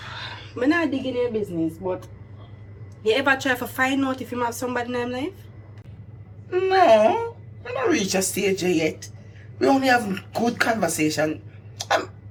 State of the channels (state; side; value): identical; both; correlation 1.00